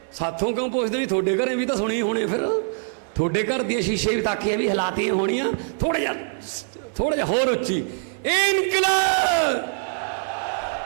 साथों क्यों पुछदे भी तुहाडे घरें भी तां सुणी होणे, फिर तुहाडे घर दी शीशे भी ताकियां भी हलातियां होणियां, थोड़ा जिहा होर उच्ची, इनकलाब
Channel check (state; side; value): silent; left; 62 dB below the other